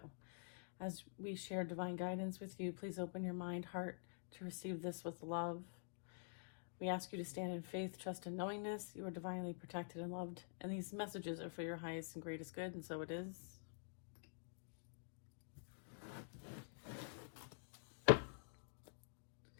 As we share divine guidance with you, please open your mind, heart to receive this with love. We ask you to stand in faith, trust, and knowingness. You are divinely protected and loved, and these messages are for your highest and greatest good, and so it is. All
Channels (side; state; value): right; silent; digital silence